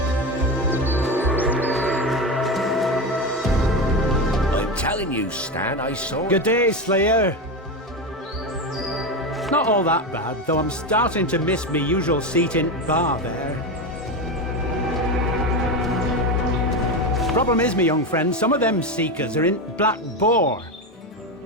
You, Stan, I saw. Good day, Slayer. Not all that bad, though I'm starting to miss me usual seat in bar there. Problem is, me young friend, some of them seekers are in Black Boar.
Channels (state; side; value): normal; both; correlation 0.17